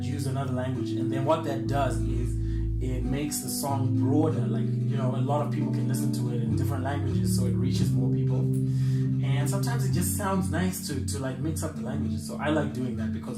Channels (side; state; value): right; noise; rumble, 27 dB below the sound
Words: use another language, and then what that does is it makes the song broader. Like, you know, a lot of people can listen to it in different languages, so it reaches more people. And sometimes it just sounds nice to like mix up the languages. So I like doing that